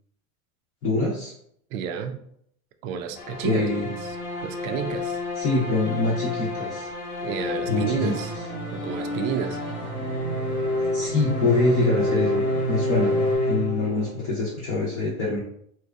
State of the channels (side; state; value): both; normal; correlation 0.26